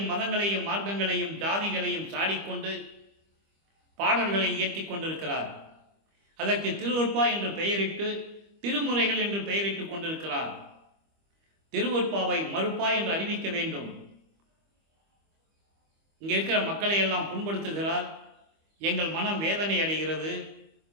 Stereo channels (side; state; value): left; late; 25 ms